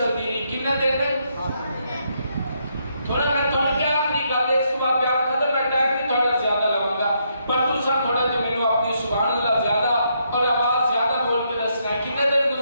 رہی. کتنے دن؟ تھوڑا میں تھوڑا کیا آخری گل ہے، اس کو آپ بیان ختم. میں ٹائم بھی تھوڑا زیادہ لگاؤں گا، پر تسا تھوڑا جو میرے اپنی سبحان اللہ زیادہ اور آواز زیادہ بول کے دسنا ہے. کتنے دن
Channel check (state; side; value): inverted; both; correlation -0.76